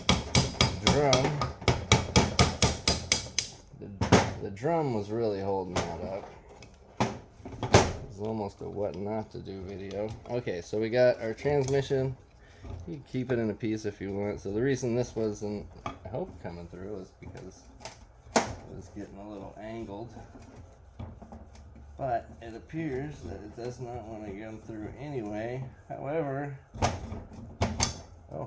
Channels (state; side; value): identical; both; correlation 1.00